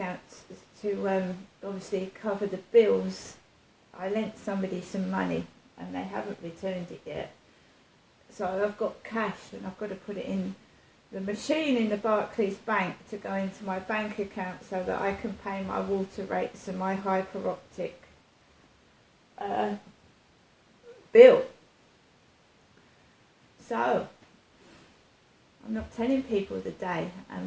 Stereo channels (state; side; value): identical; both; correlation 1.00